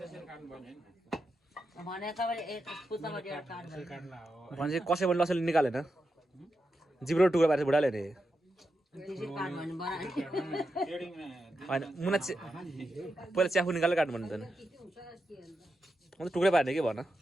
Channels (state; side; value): normal; both; correlation 0.87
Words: पर्ने भने कसै पनि लसले निकालेन जिब्रो टुक्रा पारेर बुढाले नि होइन मुना पहिला च्याफु निकालेर काट्नु भन्नु त अन्त टुक्रै पार्ने के भन